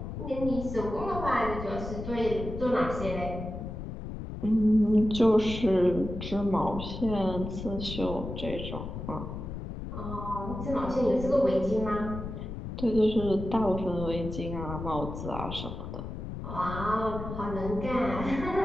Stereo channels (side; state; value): left; noise; rumble, 7 dB below the sound